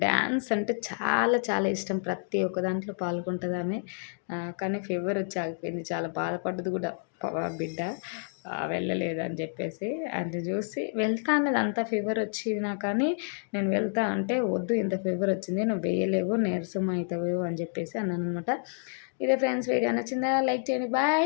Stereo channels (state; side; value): silent; right; digital silence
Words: డాన్స్ అంటే చాలా చాలా ఇష్టం. ప్రతి ఒక్క దాంట్లో పాల్గొంటదామె. కానీ ఫీవర్ వచ్చి ఆగిపోయింది. చాలా బాధపడ్డది కూడా బిడ్డ. వెళ్ళలేదు అని చెప్పేసి. అది చూసి వెళ్తా అన్నది అంత ఫీవర్ వచ్చినా కానీ నేను వెళ్తా అంటే వద్దు ఇంత ఫీవర్ వచ్చింది నువ్వు వేయలేవు నీరసం అవుతావు అని చెప్పేసి అన్నాననమాట. ఇదే ఫ్రెండ్స్ వీడియో నచ్చిందా? లైక్ చేయండి. Bye